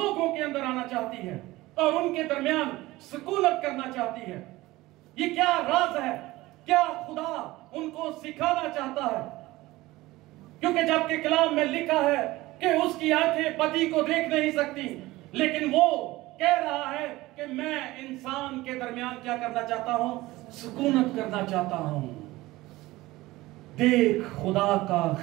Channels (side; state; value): left; quieter; 18.8 dB